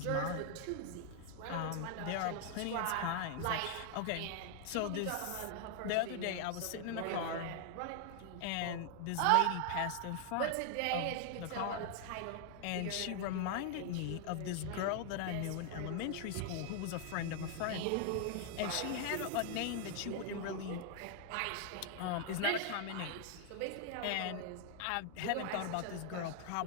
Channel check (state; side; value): different; both; correlation 0.00